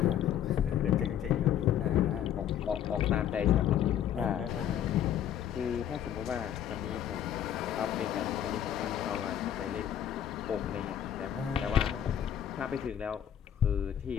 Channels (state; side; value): quieter; right; 10.1 dB